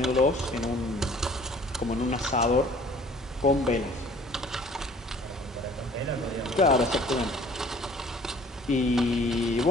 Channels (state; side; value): normal; both; correlation 0.53